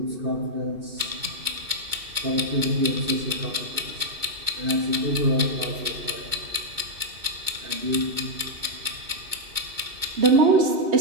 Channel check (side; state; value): left; late; 2.2 ms